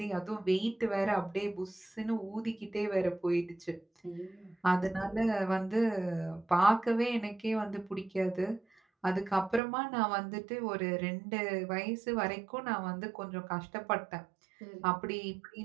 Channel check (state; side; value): drops out; left; at 9.6 s